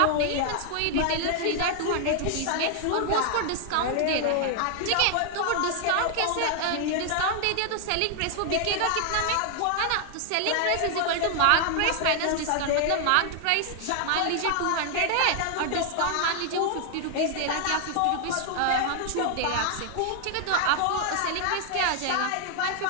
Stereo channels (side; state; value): both; different; correlation 0.00